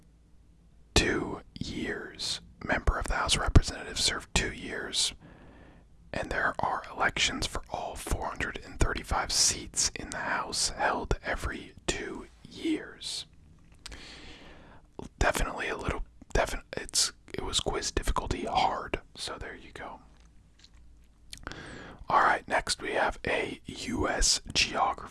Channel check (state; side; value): identical; both; correlation 1.00